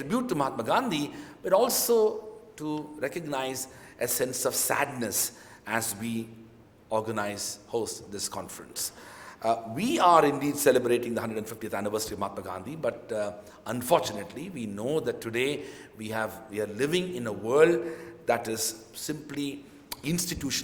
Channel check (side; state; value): both; identical; correlation 1.00